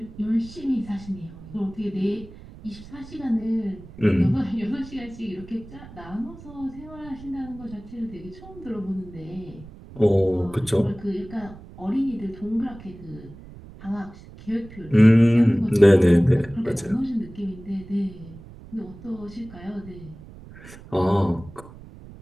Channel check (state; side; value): noise; right; rumble, 17 dB below the sound